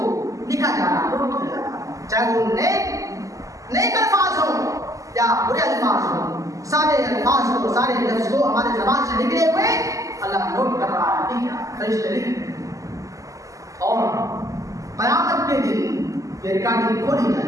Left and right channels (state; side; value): late; left; 0.16 ms